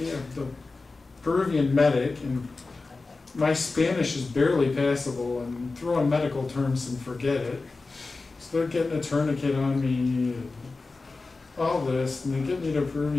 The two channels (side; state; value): right; quieter; 3.7 dB